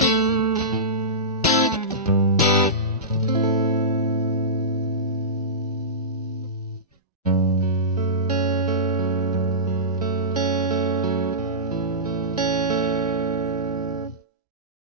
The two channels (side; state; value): both; normal; correlation -0.19